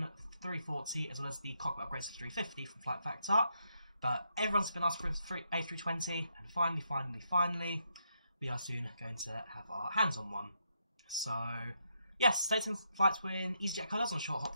340, as well as the cockpit upgrades to 350 from Flight Factor. But everyone's been asking for an A320, and finally, we are soon going to have our hands on one. So, yes, taking flights with EasyJet colours on a short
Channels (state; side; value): inverted; both; correlation -0.79